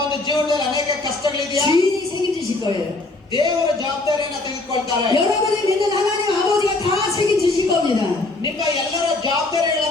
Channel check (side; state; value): right; quieter; 3.1 dB